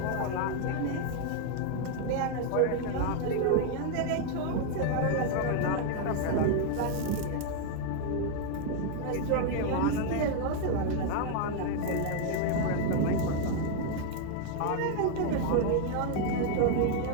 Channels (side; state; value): both; different; correlation 0.00